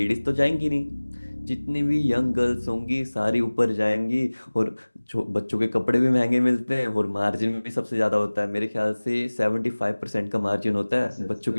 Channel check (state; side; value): inverted; both; correlation -1.00